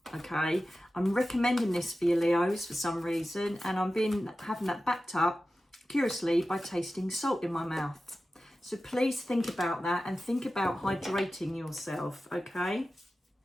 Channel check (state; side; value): normal; both; correlation 0.94